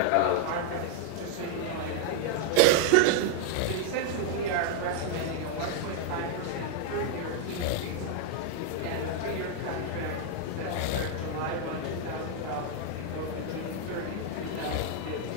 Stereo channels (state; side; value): different; both; correlation 0.00